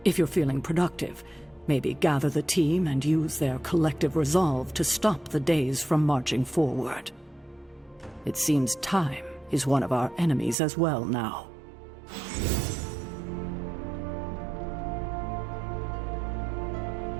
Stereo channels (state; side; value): drops out; left; at 10.6 s